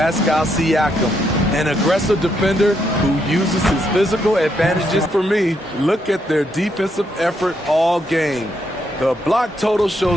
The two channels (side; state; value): both; normal; correlation 0.77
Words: Siakam, an aggressive defender who uses his physical advantages. For me, look at their defensive effort all game. The block total